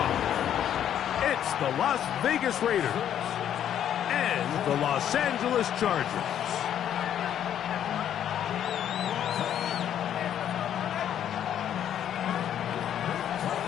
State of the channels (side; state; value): right; quieter; 10.1 dB